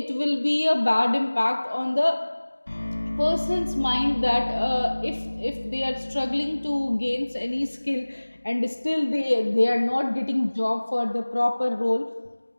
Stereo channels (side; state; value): both; inverted; correlation -1.00